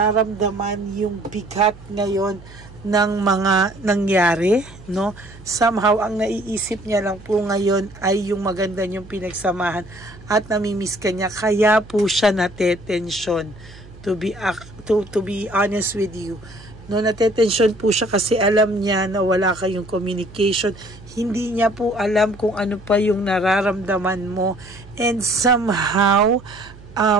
yung bigat ngayon ng mga nangyari, no? Somehow ang naiisip niya lang po ngayon ay yung maganda niyong pinagsamahan at namimiss ka niya, kaya po siya natetensyon, to be honest with you. No, natetensyon po siya kasi alam niya na wala kayong communication. Hindi niya po alam kung ano pa yung nararamdaman mo, and somehow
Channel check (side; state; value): right; noise; hum, 20 dB below the sound